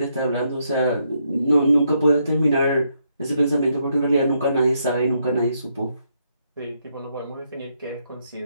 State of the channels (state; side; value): inverted; both; correlation -0.77